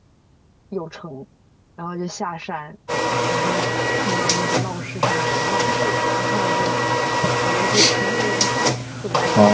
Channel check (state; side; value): identical; both; correlation 1.00